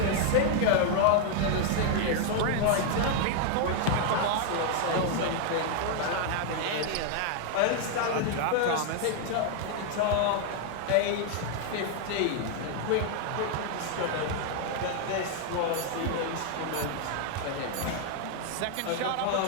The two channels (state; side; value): different; both; correlation 0.00